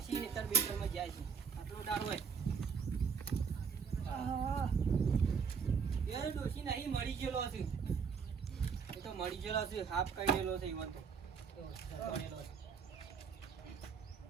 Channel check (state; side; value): quieter; left; 6.2 dB